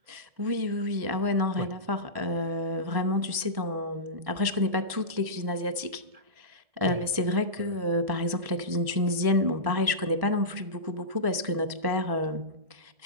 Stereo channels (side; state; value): left; late; 1.7 ms